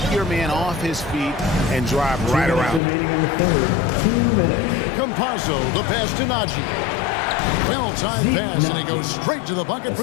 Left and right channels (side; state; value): right; drops out; at 2.8 s